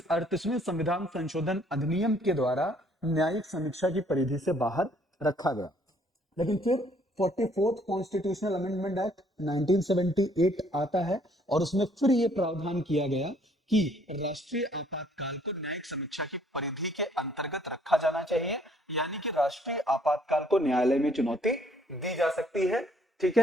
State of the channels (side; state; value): both; normal; correlation 0.63